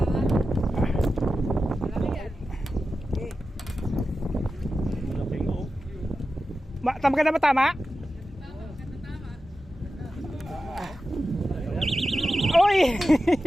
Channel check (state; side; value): normal; both; correlation 0.92